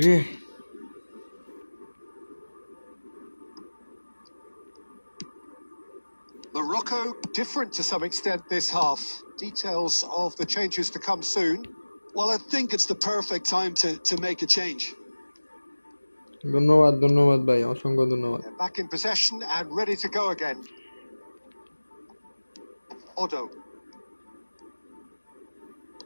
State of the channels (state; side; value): inverted; both; correlation -1.00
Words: Morocco different to some extent this half. Details of the changes to come soon. Well, I think it's the perfect time to make a change. ধন্যবাদ ভাই অসংখ্য ধন্যবাদ They're back in possession and ready to go again. Odo.